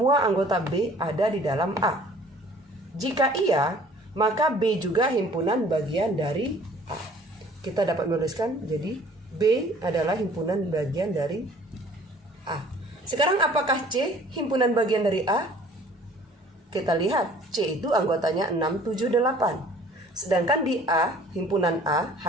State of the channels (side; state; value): both; normal; correlation 0.53